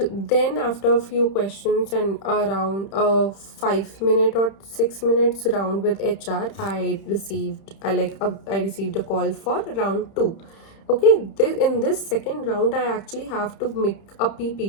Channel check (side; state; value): right; late; 31 ms